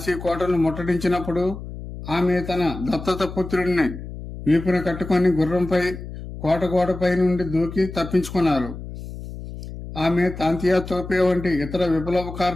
కోటను ముట్టడించినప్పుడు ఆమె తన దత్తత పుత్రుడిని వీపున కట్టుకొని గుర్రంపై కోట గోడపై నుండి దూకి తప్పించుకున్నారు. ఆమె తాంతియా తోపే వంటి ఇతర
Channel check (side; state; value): left; noise; hum, 11 dB below the sound